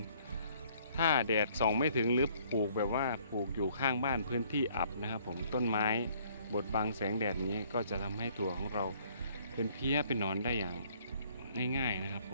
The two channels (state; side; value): inverted; both; correlation -0.61